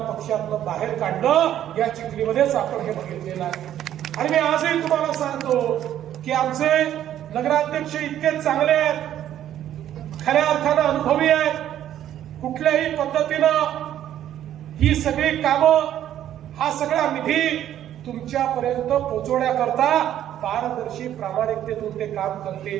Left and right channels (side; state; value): left; quieter; 11.4 dB